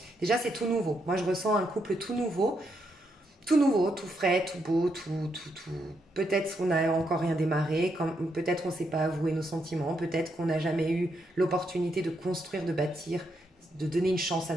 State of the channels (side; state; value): both; normal; correlation 0.79